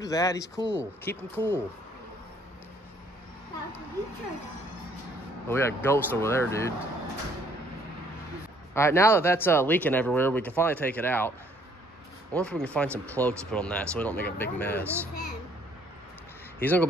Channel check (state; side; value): normal; both; correlation 0.63